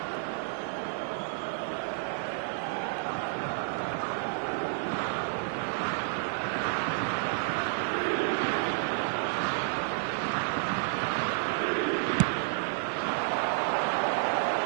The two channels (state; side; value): silent; left; digital silence